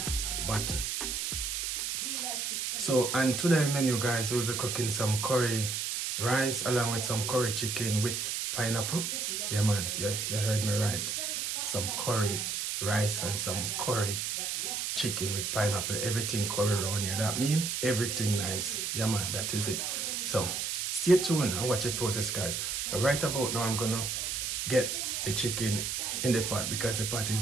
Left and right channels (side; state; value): right; noise; hiss, 1 dB below the sound